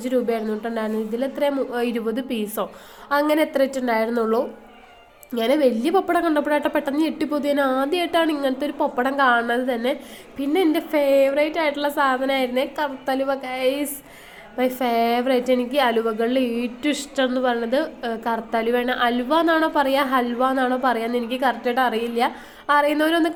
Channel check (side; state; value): both; identical; correlation 1.00